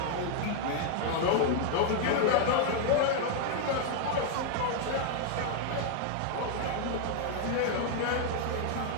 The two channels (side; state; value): both; different; correlation 0.00